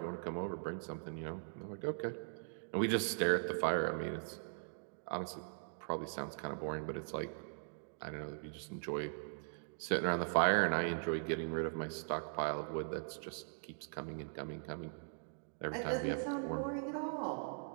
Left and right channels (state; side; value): silent; left; digital silence